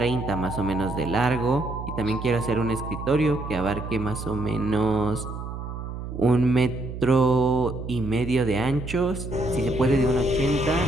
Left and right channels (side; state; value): right; noise; hum, 8 dB below the sound